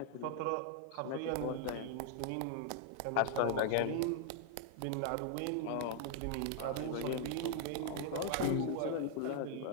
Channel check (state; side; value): different; both; correlation 0.00